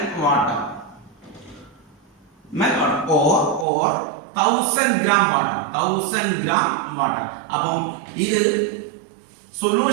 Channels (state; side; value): drops out; left; at 3.7 s